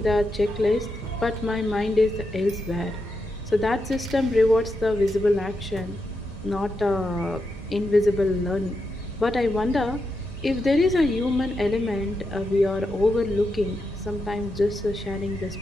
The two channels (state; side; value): normal; both; correlation 0.85